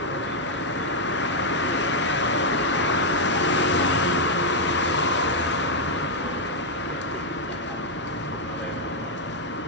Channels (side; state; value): both; normal; correlation -0.02